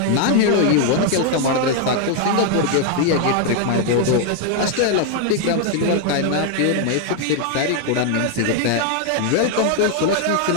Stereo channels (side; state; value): both; different; correlation 0.00